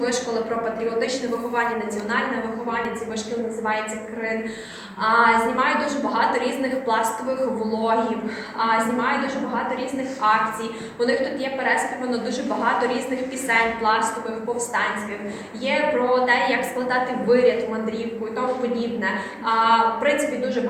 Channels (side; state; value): both; identical; correlation 1.00